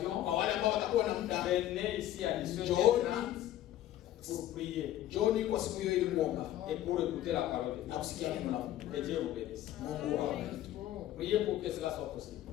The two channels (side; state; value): right; quieter; 13.0 dB